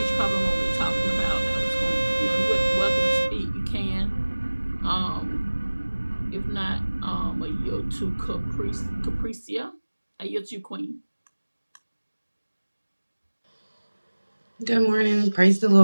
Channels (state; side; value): inverted; both; correlation -1.00